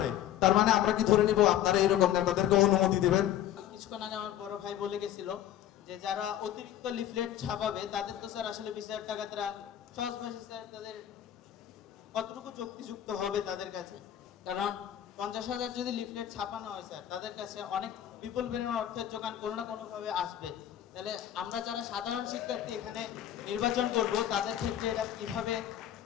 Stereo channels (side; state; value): right; quieter; 11.5 dB